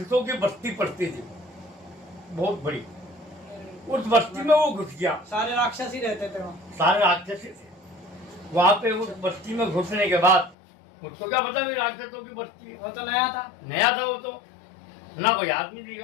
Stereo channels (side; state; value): right; drops out; at 10.6 s